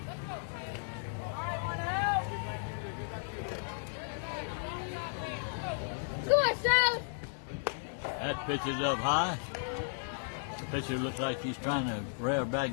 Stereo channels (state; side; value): silent; right; digital silence